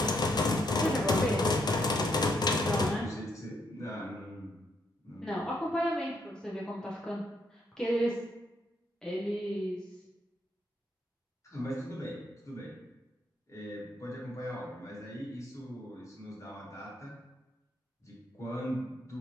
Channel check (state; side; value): normal; both; correlation 0.74